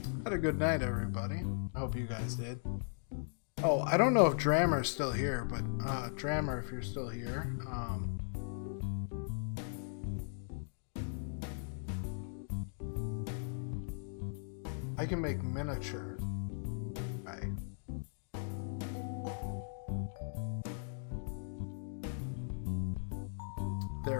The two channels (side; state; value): right; silent; digital silence